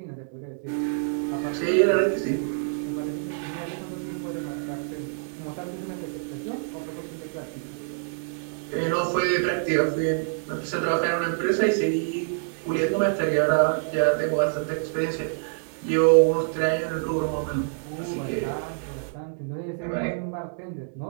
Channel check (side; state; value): left; silent; digital silence